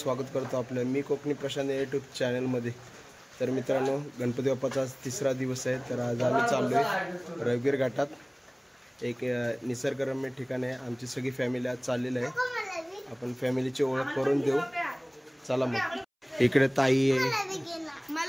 स्वागत करतो आपलं मी कोकणी प्रशांत यूट्यूब चॅनलमध्ये. तर मित्रांनो, गणपती बाप्पाचा आज 3रा दिवस आहे. तर आज आम्ही चाललो आहे रविगीर घाटात. एक निसर्गरम्य ठिकाण आहे. आमची सगळी फॅमिली आज चाललेली आहे. आपण फॅमिलीची ओळख करून देऊ. चला मग. इकडे ताई आहे,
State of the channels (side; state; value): both; identical; correlation 1.00